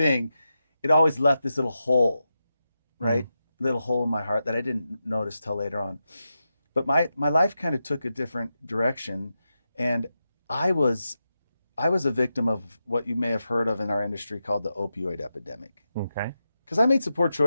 It always left this little hole, right? Little hole in my heart that I didn't notice till later on. But my life kind of took a different direction, and I was a victim of what you may have heard of in our industry called the opioid epidemic. Okay. Because I made some poor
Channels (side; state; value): both; inverted; correlation -0.89